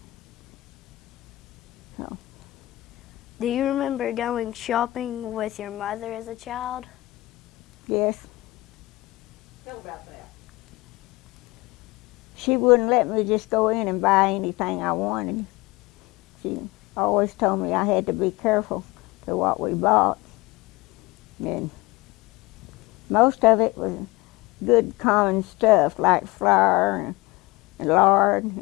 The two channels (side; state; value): right; quieter; 20.5 dB